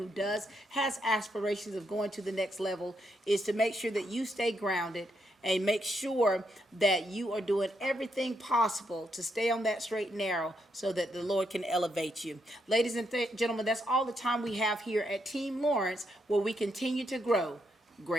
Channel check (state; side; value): normal; both; correlation 0.79